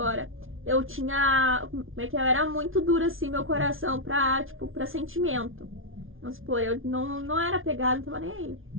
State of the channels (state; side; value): late; left; 0.59 ms